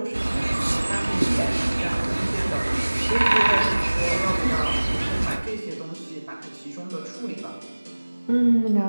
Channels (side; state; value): both; inverted; correlation -1.00